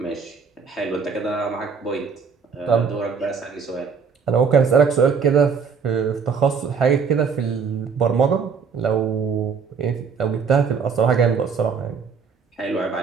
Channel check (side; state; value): left; quieter; 5.8 dB